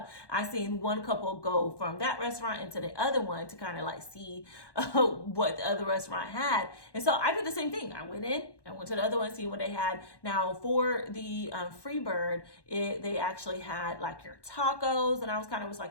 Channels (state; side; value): late; right; 1.1 ms